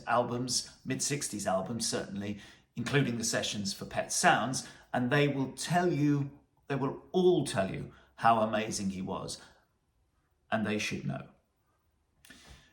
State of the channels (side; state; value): both; identical; correlation 1.00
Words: albums, mid-60s albums certainly, including the sessions for Pet Sounds, and they will all tell you how amazing he was, and they should know.